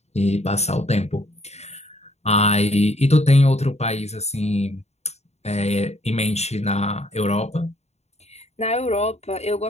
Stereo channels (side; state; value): right; late; 0.31 ms